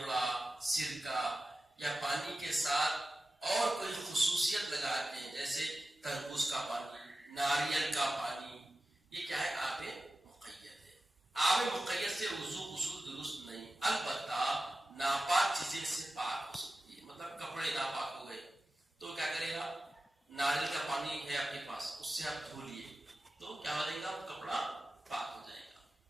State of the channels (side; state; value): both; normal; correlation 0.94